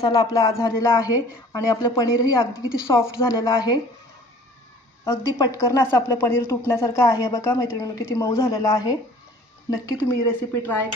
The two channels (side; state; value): both; normal; correlation 0.49